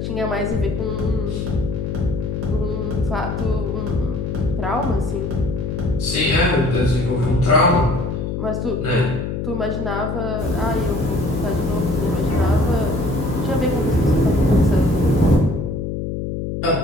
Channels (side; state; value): left; noise; hum, 3 dB below the sound